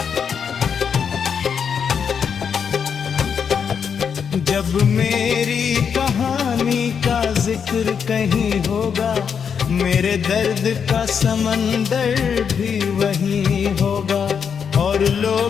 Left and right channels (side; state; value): right; quieter; 7.0 dB